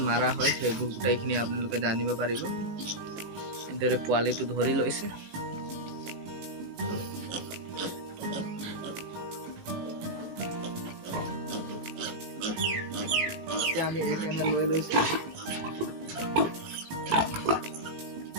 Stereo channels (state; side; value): late; left; 18 ms